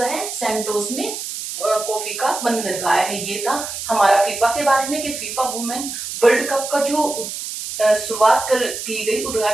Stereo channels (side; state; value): right; noise; hiss, 7 dB below the sound